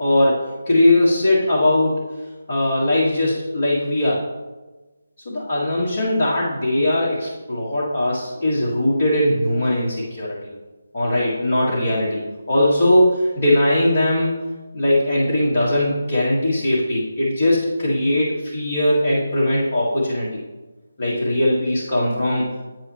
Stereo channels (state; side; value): inverted; both; correlation -0.89